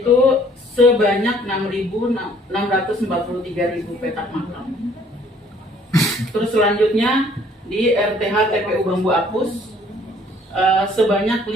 sebanyak 6.643.000 petak makam. Terus selanjutnya di RTH TPU Bambu Apus sebanyak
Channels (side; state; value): both; normal; correlation 0.59